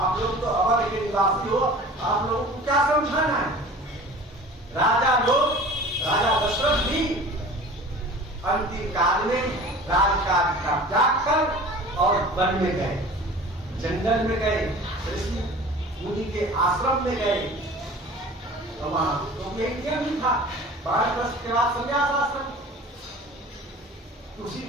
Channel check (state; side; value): normal; both; correlation 0.42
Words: लोग तो अवध के निवासी हो, आप लोगों को क्या समझाना है? राजा दशरथ भी अंतिम काल में राजकाज का त्याग कर और वन में गए, जंगल में गए, ऋषि मुनि के आश्रम में गए। तो वहां तो एक भी था, 12 वर्ष के बाद संन्यास आश्रम। उसी